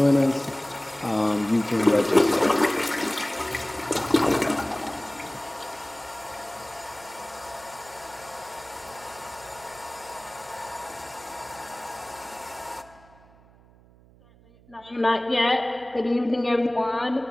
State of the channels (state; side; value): noise; right; hum, 26 dB below the sound